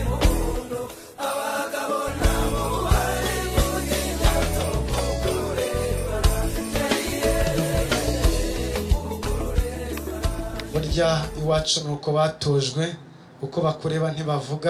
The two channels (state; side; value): identical; both; correlation 1.00